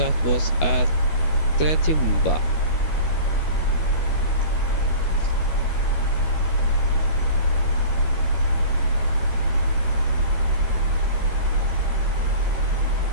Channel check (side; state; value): right; late; 13 ms